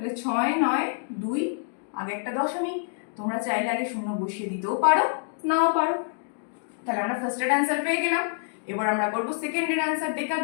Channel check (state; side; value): silent; right; digital silence